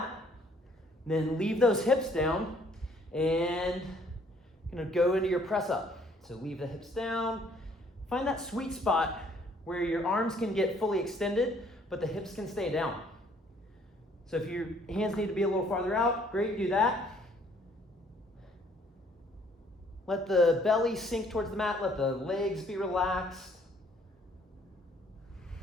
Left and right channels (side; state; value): both; normal; correlation 0.62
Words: Then leave those hips down and going to go into your press-up. So leave the hips down. Find that sweet spot where your arms can get fully extended, but the hips can stay down. So if your hands need to be a little farther out, great, do that. Let the belly sink towards the mat. Let the legs be relaxed.